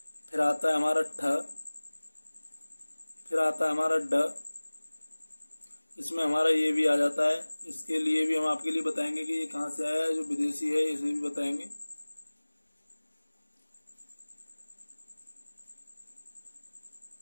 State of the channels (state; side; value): inverted; both; correlation -1.00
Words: फिर आता है हमारा ठ, फिर आता है हमारा ड, इसमें हमारा ये भी आ जाता है। इसके लिए भी हम आपके लिए बताएंगे कि ये कहाँ से आया है, जो विदेशी है इसे भी बताएंगे।